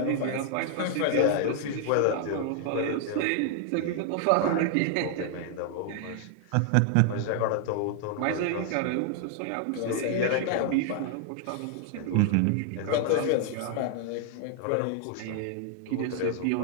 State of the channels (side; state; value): both; different; correlation 0.00